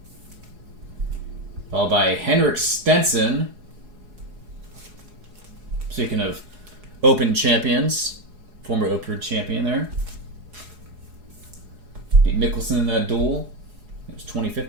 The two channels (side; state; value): left; late; 4.8 ms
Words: Followed by Henrik Stenson. Speaking of Open champions, former Open champion there. Beat Mickelson in that duel. It was